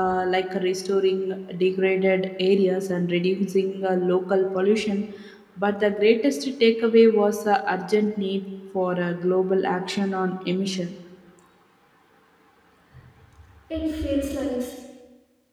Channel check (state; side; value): identical; both; correlation 1.00